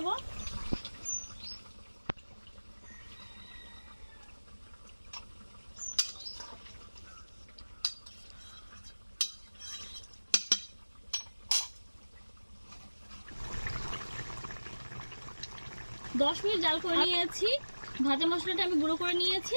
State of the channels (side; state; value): both; inverted; correlation -1.00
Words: দশ মিনিট জাল করে নিয়েছি। ভাজা মশলাটা আমি গুঁড়ো করে নিয়েছি,